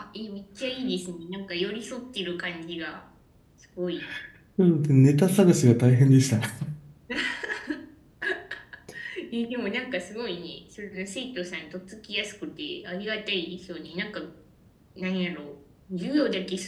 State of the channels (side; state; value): both; identical; correlation 1.00